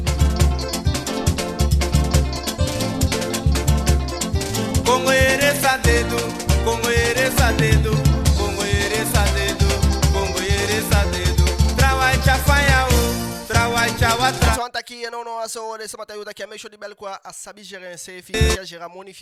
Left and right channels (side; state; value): both; identical; correlation 1.00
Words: daqui não aso de samata yuta que a mexo de bel quoi a sabi gérer un CFI que gera moni